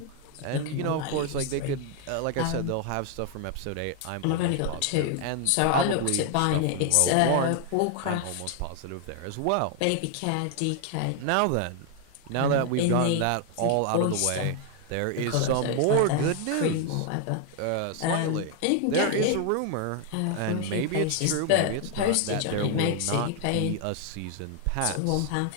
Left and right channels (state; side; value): different; both; correlation 0.00